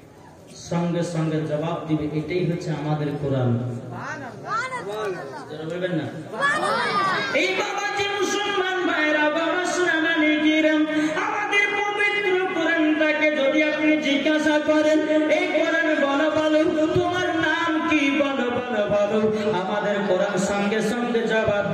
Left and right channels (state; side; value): identical; both; correlation 1.00